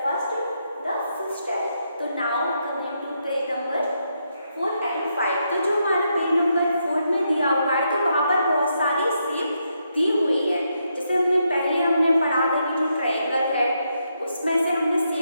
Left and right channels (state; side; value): inverted; both; correlation -0.80